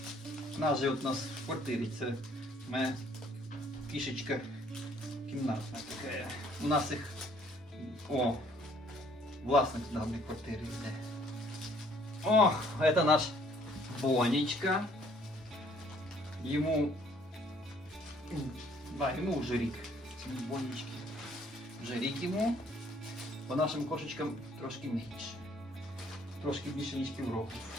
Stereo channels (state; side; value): normal; both; correlation 0.61